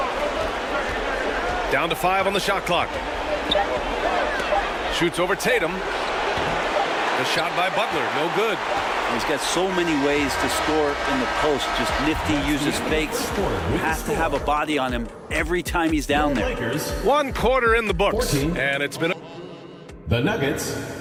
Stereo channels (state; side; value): identical; both; correlation 1.00